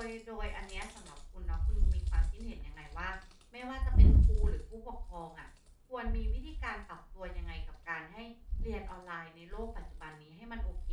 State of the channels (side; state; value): both; identical; correlation 1.00